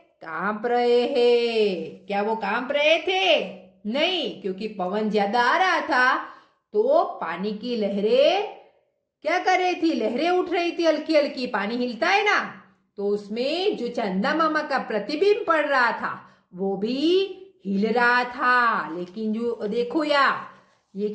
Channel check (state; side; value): identical; both; correlation 1.00